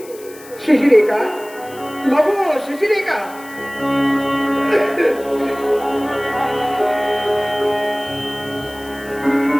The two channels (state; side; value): noise; left; hiss, 20 dB below the sound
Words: ಶಶಿರೇಖಾ, ಮಗು ಶಶಿರೇಖಾ.